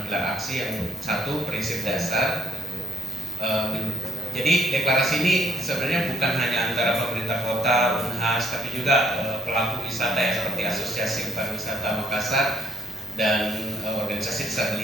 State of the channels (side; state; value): both; normal; correlation 0.72